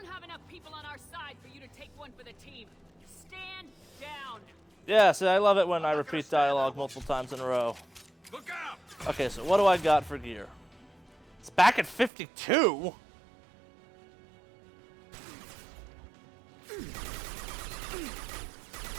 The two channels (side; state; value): left; drops out; at 12.1 s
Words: have enough people on our side for you to take one for the team. Stand down. Yeah, see, I love it when I repeat dialogue multiple times in a row. Look out! Okay, so what do I got for gear? It's back at 52?